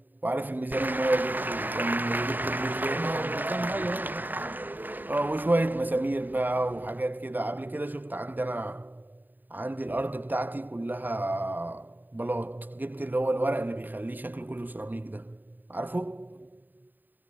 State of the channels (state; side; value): late; left; 0.089 ms